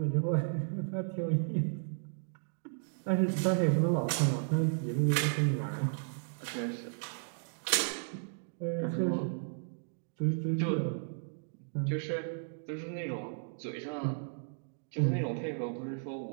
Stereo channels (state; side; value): silent; left; digital silence